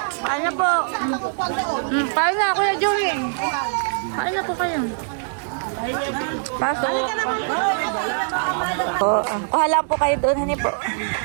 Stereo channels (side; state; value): left; silent; digital silence